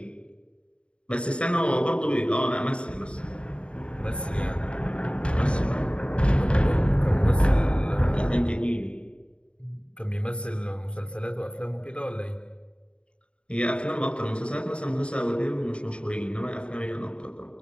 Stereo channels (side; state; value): right; late; 0.056 ms